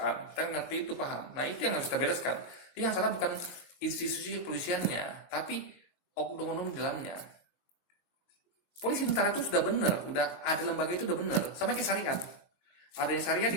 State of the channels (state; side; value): late; right; 22 ms